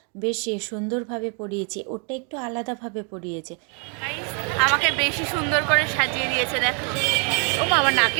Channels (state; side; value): quieter; left; 38.2 dB